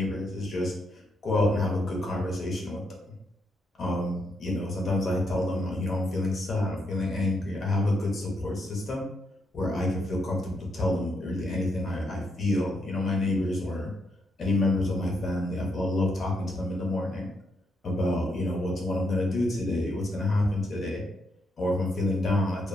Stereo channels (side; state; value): both; normal; correlation 0.78